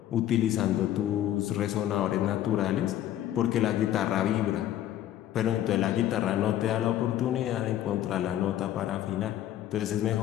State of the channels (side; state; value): right; quieter; 12.4 dB